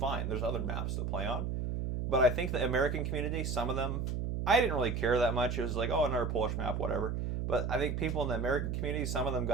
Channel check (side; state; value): right; noise; hum, 1 dB below the sound